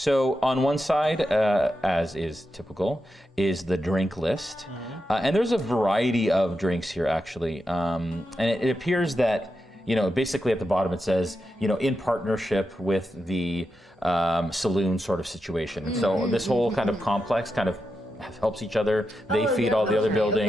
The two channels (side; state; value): both; normal; correlation 0.87